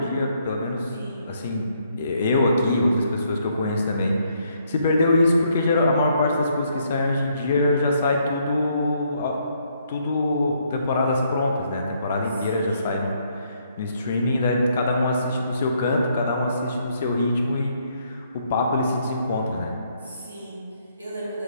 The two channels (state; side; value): inverted; both; correlation -0.72